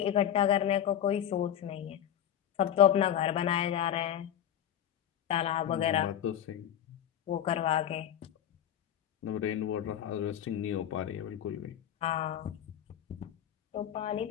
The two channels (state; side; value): quieter; right; 10.3 dB